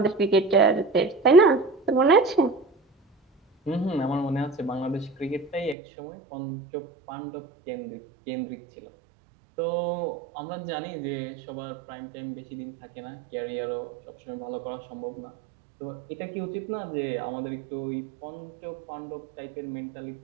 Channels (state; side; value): drops out; left; at 5.8 s